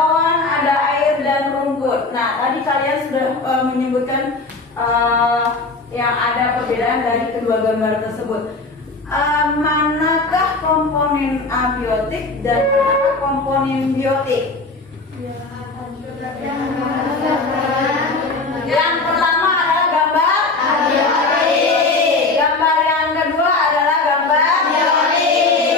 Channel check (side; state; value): right; quieter; 3.6 dB